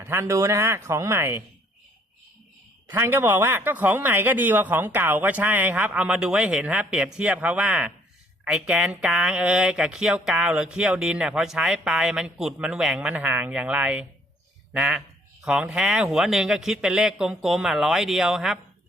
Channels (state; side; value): normal; both; correlation 0.62